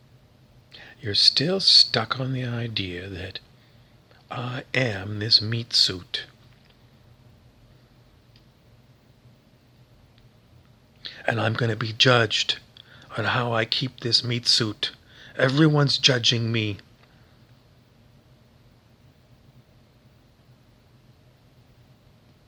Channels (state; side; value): identical; both; correlation 1.00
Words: You're still stuck on the idea that I am this meat suit. And I'm going to be judged on how I keep this meat suit. Everyone's judging me.